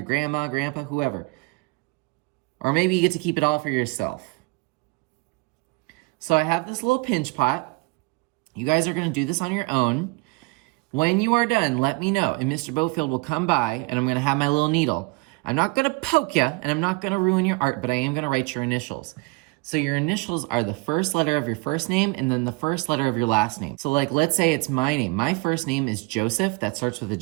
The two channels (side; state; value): left; quieter; 25.7 dB